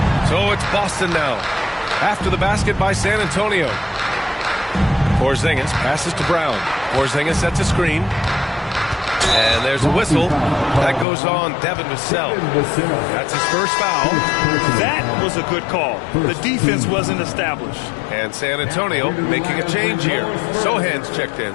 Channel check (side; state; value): right; drops out; at 11.1 s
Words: So it's Boston now. After the basket by San Antonio. Porzingis passes to Brown. Porzingis sets a screen. And there's a whistle. That goes on Devin Vassell. That's his first foul. That was a good call. The defense wasn't established. And San Antonio making a change here. Sohan's checked in.